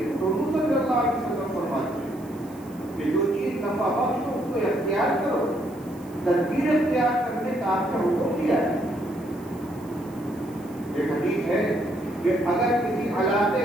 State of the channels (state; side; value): noise; right; hiss, 26 dB below the sound